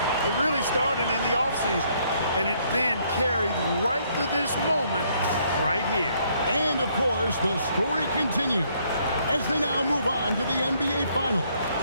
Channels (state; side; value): inverted; both; correlation -0.68